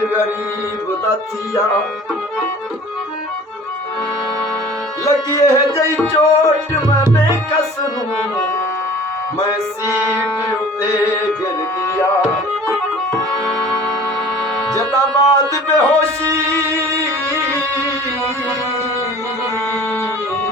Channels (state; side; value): normal; both; correlation 0.46